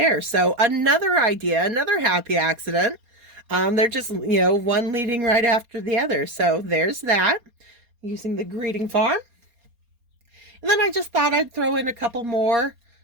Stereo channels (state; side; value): late; left; 4.3 ms